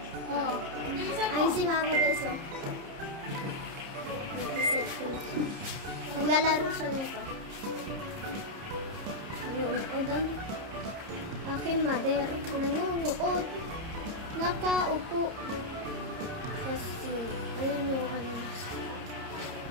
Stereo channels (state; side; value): late; left; 30 ms